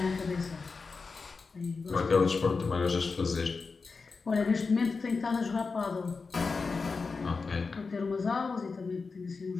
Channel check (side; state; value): right; quieter; 4.5 dB